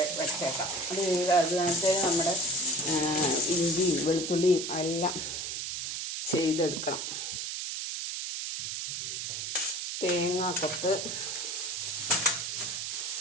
വെച്ചേക്കാം. അത് കണക്ക് നമ്മുടെ ഇഞ്ചിയും വെളുത്തുള്ളിയും എല്ലാം ചെയ്തെടുക്കണം. തേങ്ങാക്കൊത്ത്,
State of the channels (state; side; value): noise; right; hiss, 4 dB below the sound